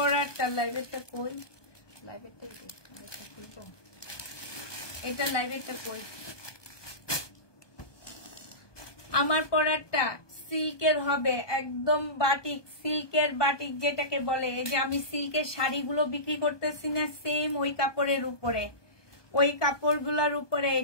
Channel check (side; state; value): right; late; 1.2 ms